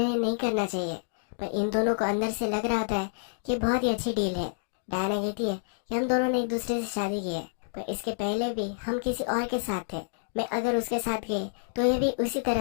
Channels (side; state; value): right; silent; digital silence